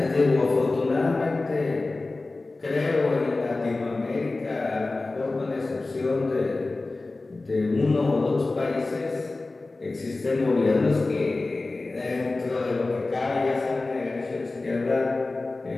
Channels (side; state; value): right; quieter; 3.3 dB